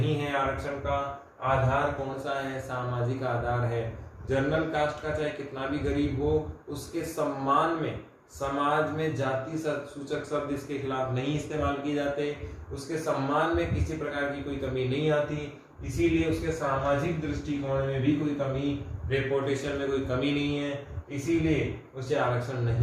है। आरक्षण का आधार कौन सा है? सामाजिक आधार है। जनरल कास्ट का चाहे कितना भी गरीब हो, उसके सम्मान में समाज में जाति सूचक शब्द इसके खिलाफ नहीं इस्तेमाल किए जाते, उसके सम्मान में किसी प्रकार की कोई कमी नहीं आती, इसीलिए उसके सामाजिक दृष्टिकोण में भी कोई कमी, रेपुटेशन में कोई कमी नहीं है, इसीलिए उसे आरक्षण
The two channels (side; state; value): both; identical; correlation 1.00